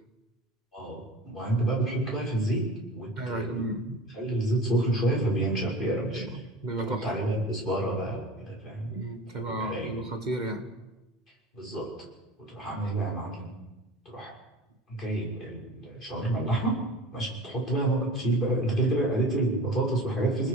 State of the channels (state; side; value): normal; both; correlation 0.37